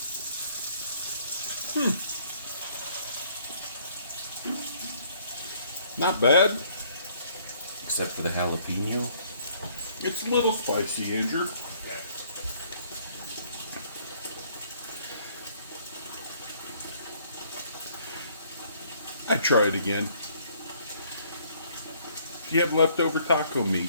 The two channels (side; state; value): both; inverted; correlation -0.63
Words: Not bad. Except for the jalapeno. It's a little spicy, Andrew. I'd try it again. If you have leftover taco